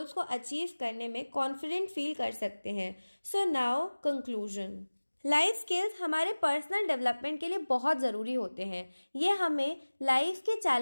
को अचीव करने में कॉन्फिडेंट फील कर सकते हैं। So now conclusion. Life skills हमारे पर्सनल डेवलपमेंट के लिए बहुत ज़रूरी होते हैं। ये हमें लाइफ के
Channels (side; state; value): both; inverted; correlation -1.00